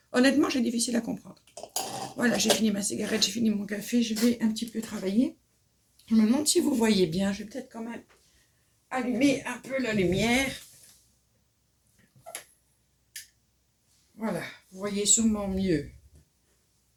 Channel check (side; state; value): both; identical; correlation 1.00